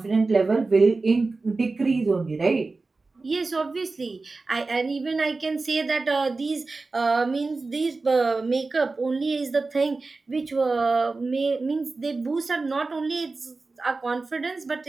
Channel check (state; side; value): quieter; left; 3.7 dB